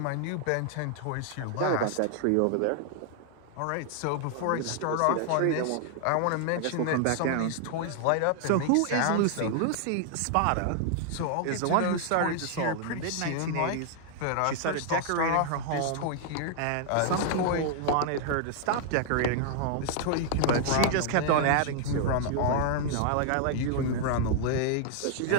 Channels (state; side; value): different; both; correlation 0.00